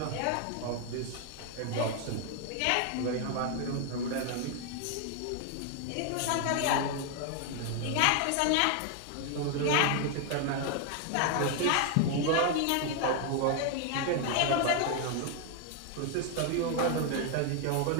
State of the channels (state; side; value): different; both; correlation 0.00